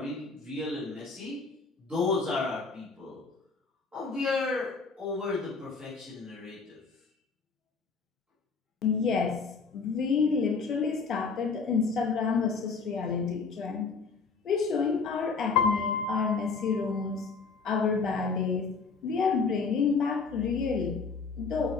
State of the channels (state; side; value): quieter; right; 4.8 dB